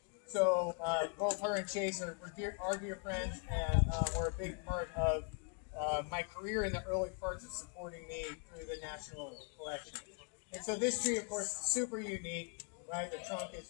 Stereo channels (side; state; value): right; quieter; 37.4 dB